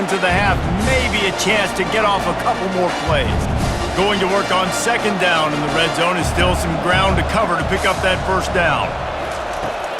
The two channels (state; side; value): identical; both; correlation 1.00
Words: of the half. Maybe a chance to get off a couple more plays. Going to work on 2nd down in the red zone is still some ground to cover to pick up that first down.